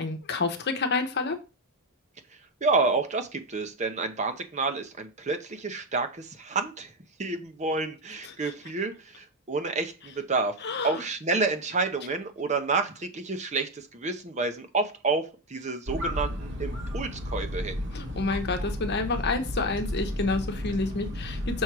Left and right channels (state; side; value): normal; both; correlation 0.13